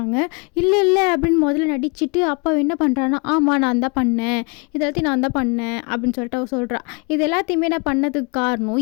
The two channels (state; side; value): quieter; right; 31.7 dB